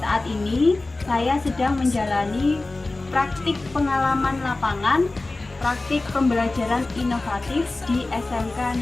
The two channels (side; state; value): right; quieter; 3.1 dB